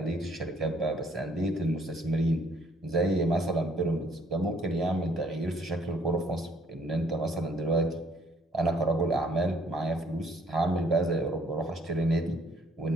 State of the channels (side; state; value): both; normal; correlation 0.63